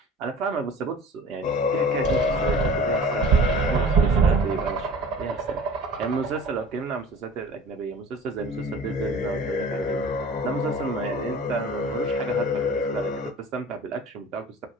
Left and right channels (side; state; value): both; normal; correlation 0.42